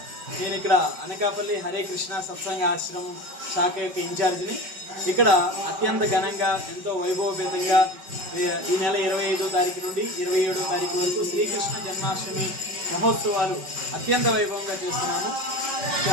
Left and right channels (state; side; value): late; left; 5.3 ms